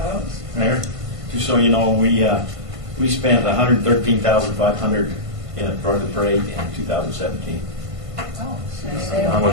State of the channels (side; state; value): left; late; 1.5 ms